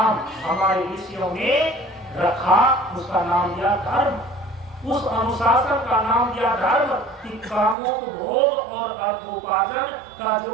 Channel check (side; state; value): left; drops out; at 7.8 s